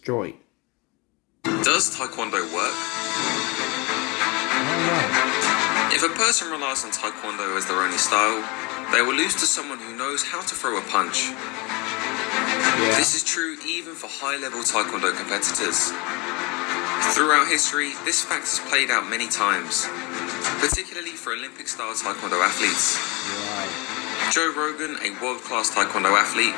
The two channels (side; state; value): right; quieter; 27.2 dB